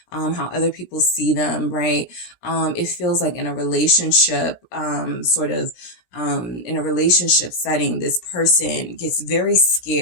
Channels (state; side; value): late; right; 16 ms